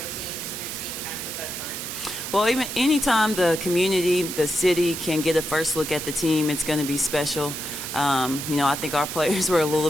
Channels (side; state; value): right; noise; hiss, 6 dB below the sound